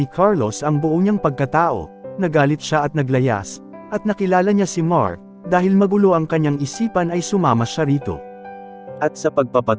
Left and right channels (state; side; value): identical; both; correlation 1.00